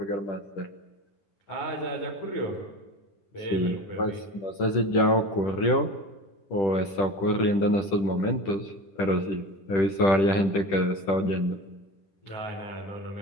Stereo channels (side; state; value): right; late; 10 ms